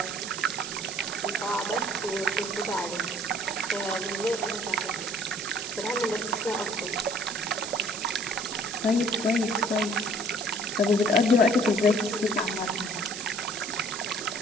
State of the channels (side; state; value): right; noise; hiss, 7 dB below the sound